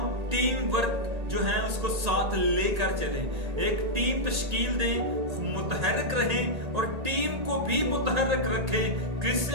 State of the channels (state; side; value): late; left; 1.8 ms